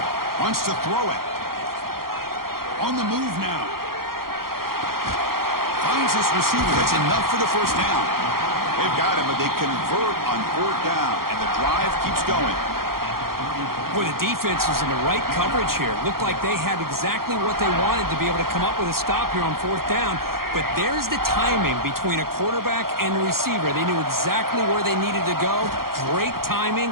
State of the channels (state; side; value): late; left; 0.93 ms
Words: Wants to throw it. On the move now. Finds this receiver. That's enough for the first down. They've got him, but they convert on 4th down, and the drive keeps going. Boy, the defense is in the right coverage here. Looked like they had exactly what they wanted to be able to come up with a stop here on 4th down. But there's the timing between a quarterback and the receiver. They knew exactly where they needed to go. Great timing